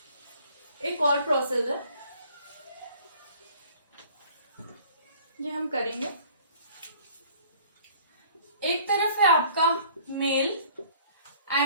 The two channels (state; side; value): inverted; both; correlation -0.53